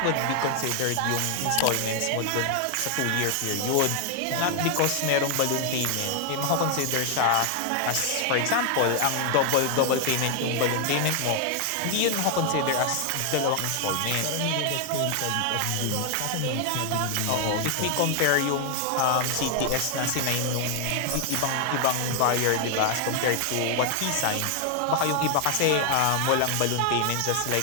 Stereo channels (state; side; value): different; both; correlation 0.00